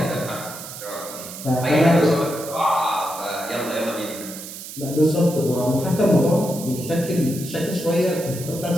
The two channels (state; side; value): noise; right; hiss, 11 dB below the sound